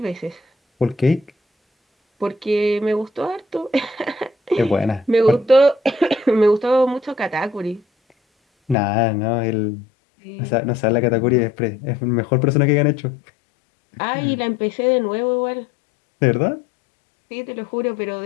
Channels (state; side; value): drops out; right; at 8.8 s